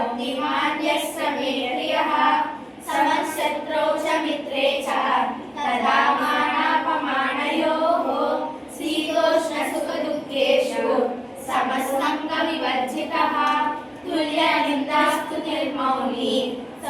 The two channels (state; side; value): identical; both; correlation 1.00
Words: यः स मे प्रियः समशत्रौ च मित्रे च तदा मानापमानयोः शीतोष्णसुखदुःखेषु समसङ्गविवर्जितः तुल्यनिन्दास्तुतिर्मौनी